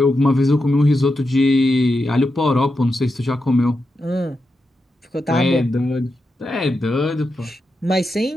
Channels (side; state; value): both; normal; correlation 0.87